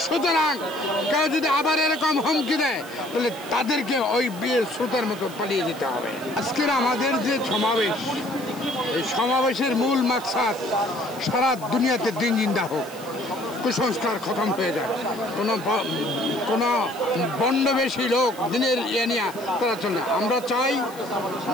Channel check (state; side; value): noise; left; hiss, 20 dB below the sound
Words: সুতরাং কেউ যদি আবার এরকম হুমকি দেয় তাহলে তাদেরকে ওই বিয়ের স্রোতের মতো পালিয়ে যেতে হবে। আজকের আমাদের যে সমাবেশ, এই সমাবেশের মূল মাকসাদ সারা দুনিয়াতে দিন জিন্দা হোক, কুসংস্কার খতম হয়ে যায়, কোনো বন্ডবেশী লোক দিনের ইয়ে নিয়ে তারা চলে। আমরা চাই